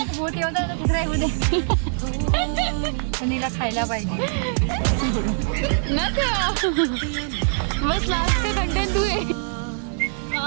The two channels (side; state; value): left; silent; 63 dB below the other